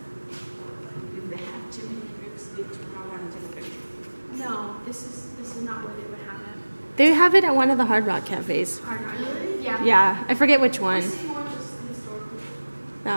No, this is not where they would have it. They have it at one of the Hard Rock cafes. Hard Rock. Really? Yeah. Yeah, I forget which one. This is more just historical.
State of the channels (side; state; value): both; inverted; correlation -1.00